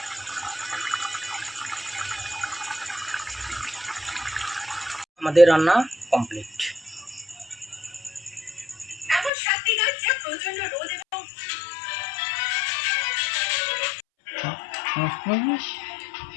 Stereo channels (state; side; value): drops out; right; at 9.3 s